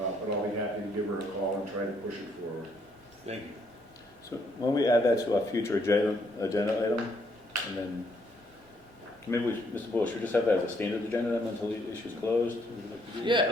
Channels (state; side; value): normal; both; correlation 0.70